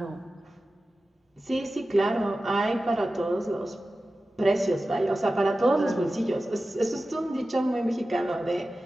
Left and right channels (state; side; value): normal; both; correlation 0.95